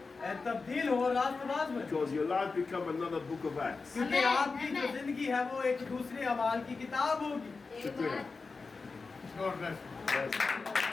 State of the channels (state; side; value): quieter; right; 4.3 dB